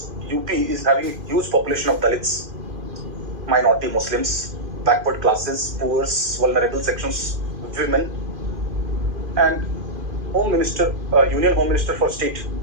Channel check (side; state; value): left; late; 2.5 ms